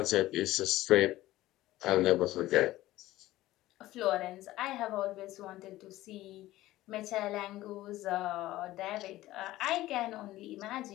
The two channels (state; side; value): quieter; right; 16.2 dB